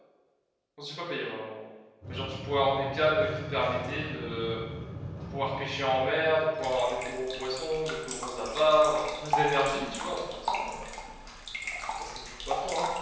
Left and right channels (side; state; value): both; identical; correlation 1.00